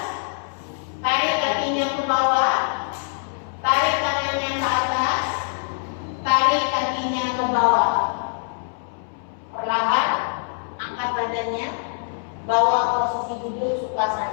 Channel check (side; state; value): right; silent; 63 dB below the other